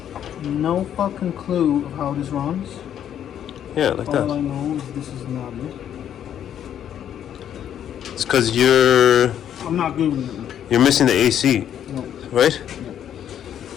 no fucking clue of how this runs. Yeah, like All that. I know is this is not it. It's because you're I'm not Googling it. you're missing the AC, No, right?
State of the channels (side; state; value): right; quieter; 9.9 dB